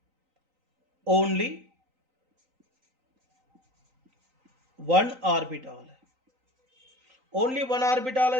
ओनली 1 ऑर्बिटल है। ओनली 1 ऑर्बिटल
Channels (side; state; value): left; late; 3.9 ms